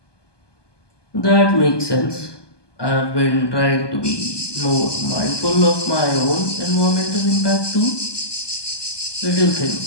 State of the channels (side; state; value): right; late; 1.2 ms